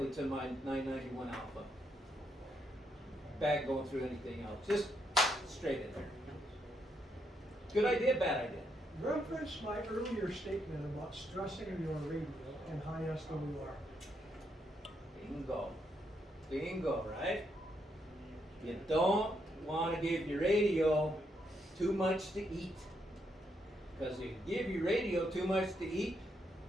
to my 991 alpha. Back going through anything else. Just straight in there. Good idea, bad idea? Reference my earlier statement about stressing your radio and high SWR. Bingo. Bingo, right? You don't want to give your radio too much to eat. Because if you give your radio too much to eat,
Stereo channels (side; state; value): both; normal; correlation 0.78